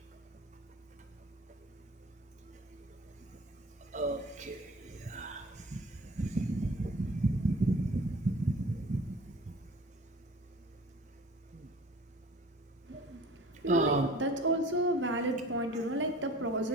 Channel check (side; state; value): both; normal; correlation 0.46